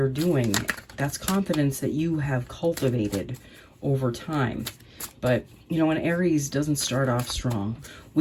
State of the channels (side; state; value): both; identical; correlation 1.00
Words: doing. That's confidence that you have cultivated over time. But, you know, an Aries doesn't start off strong.